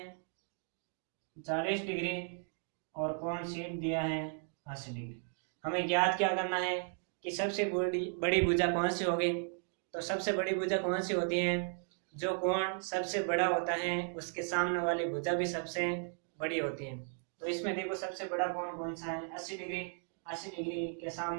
40 डिग्री और कोण C दिया है 80 डिग्री। हमें ज्ञात क्या करना है कि सबसे बड़ी भुजा कौन सी होगी। तो सबसे बड़ी भुजा कौन सी होती है, जो कोण सबसे बड़ा होता है उसके सामने वाली भुजा भी सबसे बड़ी होती है। तो इसमें देखो सबसे बड़ा कोण कौन सा है 80 डिग्री, 80 डिग्री के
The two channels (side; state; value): left; silent; 54 dB below the other